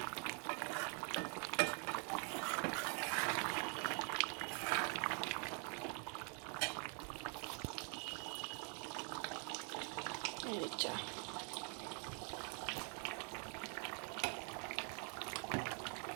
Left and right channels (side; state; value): left; quieter; 39.5 dB